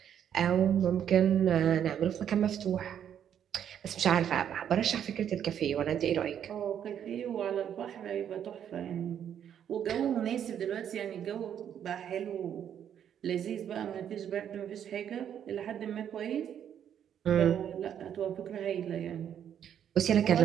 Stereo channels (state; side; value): quieter; left; 9.3 dB